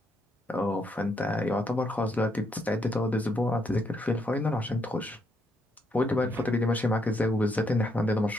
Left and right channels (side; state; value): both; normal; correlation 0.75